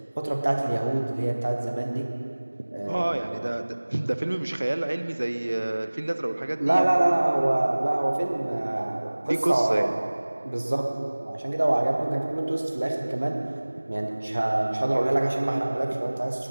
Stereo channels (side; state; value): both; inverted; correlation -1.00